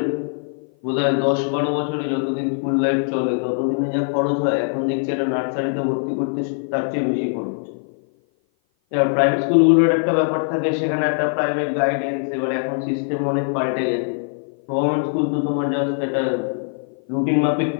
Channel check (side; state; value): right; silent; 56 dB below the other